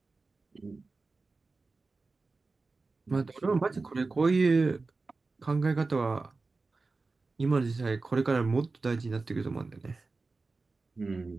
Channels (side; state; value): left; quieter; 3.8 dB